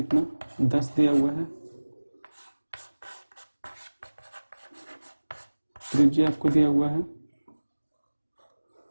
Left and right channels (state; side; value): inverted; both; correlation -1.00